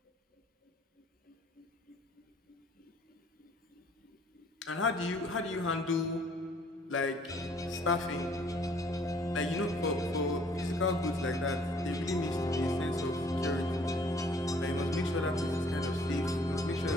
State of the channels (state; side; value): normal; both; correlation 0.59